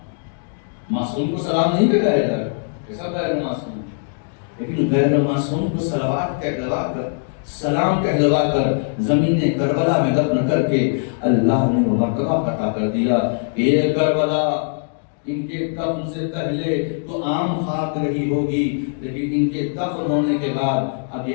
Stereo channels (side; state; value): right; silent; digital silence